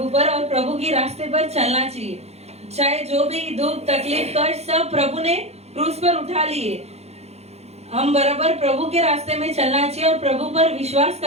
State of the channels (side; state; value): left; late; 0.31 ms